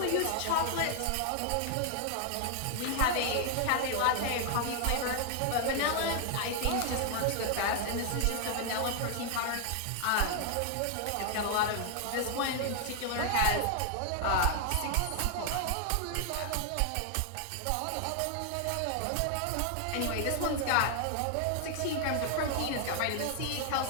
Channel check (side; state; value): both; different; correlation 0.00